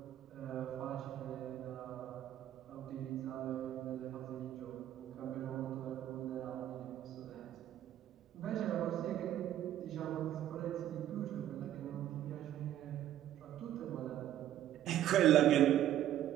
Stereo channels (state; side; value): quieter; left; 12.0 dB